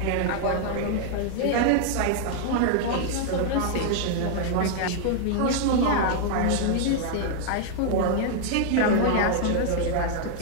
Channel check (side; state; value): both; different; correlation -0.01